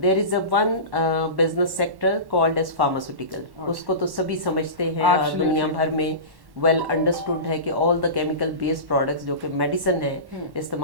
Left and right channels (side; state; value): left; late; 1.1 ms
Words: is a one business sector called as pharmaceutical. उसको तो सभी समझते हैं और दुनिया भर में वेल अंडरस्टूड है कि all the chemical based products जो कि मेडिसिन है